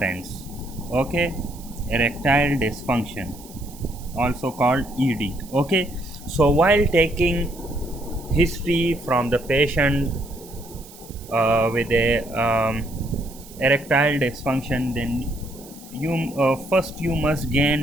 Okay, erectile dysfunction, also called ed. Okay, so while taking history from the patient with a erectile dysfunction, then you first you must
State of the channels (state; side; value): noise; right; hiss, 20 dB below the sound